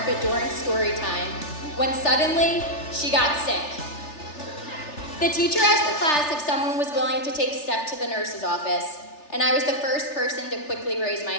during story time, when suddenly, she got sick. The teacher asked the class if someone was willing to take Steph to the nurse's office, and I was the first person to quickly raise my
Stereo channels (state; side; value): late; right; 3.3 ms